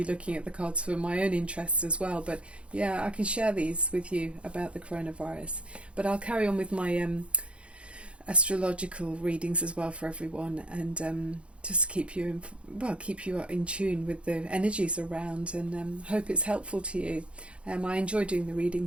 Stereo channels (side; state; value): left; late; 0.060 ms